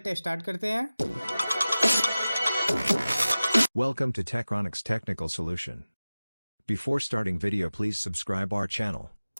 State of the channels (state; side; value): inverted; both; correlation -0.97